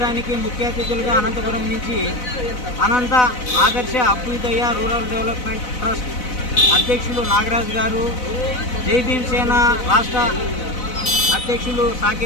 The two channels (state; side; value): late; right; 4.0 ms